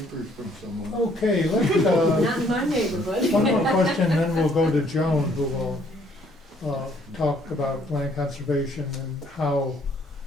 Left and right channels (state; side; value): normal; both; correlation 0.64